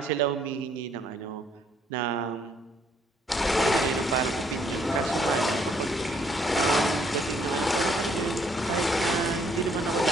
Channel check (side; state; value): both; normal; correlation 0.67